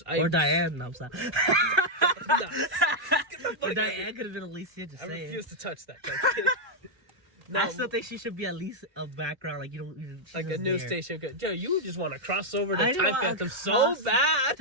Diane. No, I'm sorry. No. But Diane could have been Alicia. Just I saying. refuse to touch that. No, I still think she should be at least a background, like like a news station. Yo, you just want to cross over to I Time know, Phantom so bad.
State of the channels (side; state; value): left; late; 1.3 ms